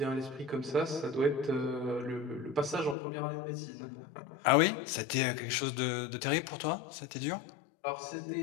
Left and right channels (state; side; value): drops out; right; at 3.0 s